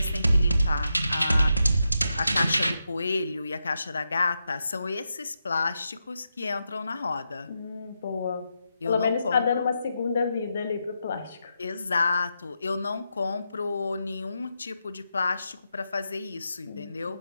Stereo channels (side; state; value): both; inverted; correlation -0.86